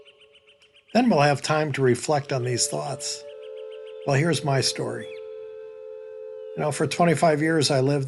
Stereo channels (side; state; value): both; identical; correlation 1.00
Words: Then we'll have time to reflect on these thoughts. Well, here's my story. For 25 years, I